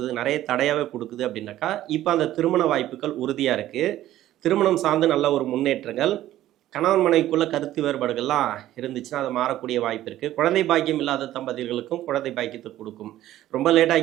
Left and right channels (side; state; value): left; quieter; 13.7 dB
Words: நிறைய தடையாகவே கொடுக்குது அப்படின்னாக்கா, இப்போ அந்த திருமண வாய்ப்புகள் உறுதியாக இருக்குது. திருமணம் சார்ந்து நல்ல ஒரு முன்னேற்றங்கள், கணவன் மனைவிக்குள்ள கருத்து வேறுபாடுகள்லாம் இருந்துச்சுன்னா அது மாறக்கூடிய வாய்ப்பு இருக்குது. குழந்தை பாக்கியம் இல்லாத தம்பதிகளுக்கும் குழந்தை பாக்கியத்தை கொடுக்கும். ரொம்ப